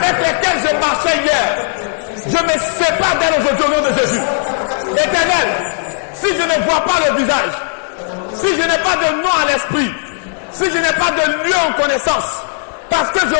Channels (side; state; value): right; silent; 66 dB below the other